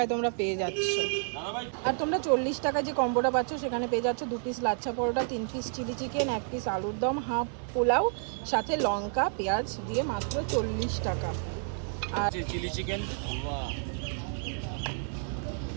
তোমরা পেয়ে যাচ্ছ। আর তোমরা 40 টাকায় যে কম্বোটা পাচ্ছ সেখানে পেয়ে যাচ্ছ 2 piece lachha paratha, 3 piece chilli chicken, 1 piece আলুর দম, হাফ পোলাও, সাথে লঙ্কা পেঁয়াজ দিয়ে মাত্র 40 টাকা। আর চিলি চিকেন, বাহ,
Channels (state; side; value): silent; left; 58 dB below the other